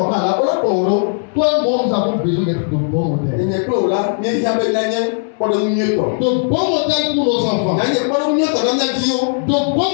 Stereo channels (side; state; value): right; silent; 66 dB below the other